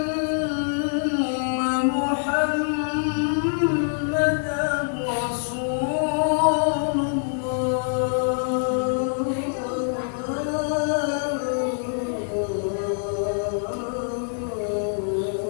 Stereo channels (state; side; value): silent; right; digital silence